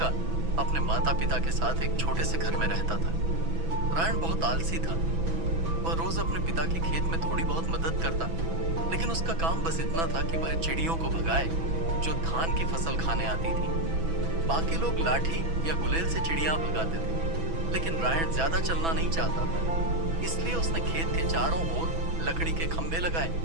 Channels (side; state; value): left; late; 6.1 ms